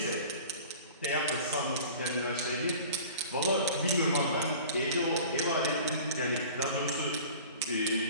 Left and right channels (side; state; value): both; inverted; correlation -0.42